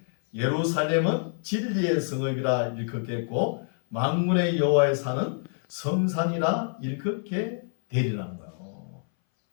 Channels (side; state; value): right; silent; 60 dB below the other